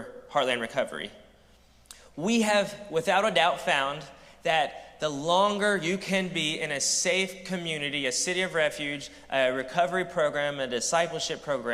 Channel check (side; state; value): both; identical; correlation 1.00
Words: Heartland Recovery. We have, without a doubt, found that the longer you can be in a safe community, a city of refuge, a recovery program, a discipleship